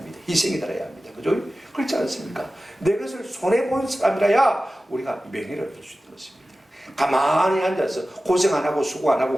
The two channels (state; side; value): normal; both; correlation 0.95